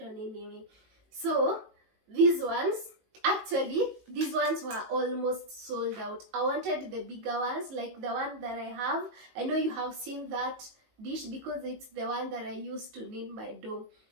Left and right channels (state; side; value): late; left; 18 ms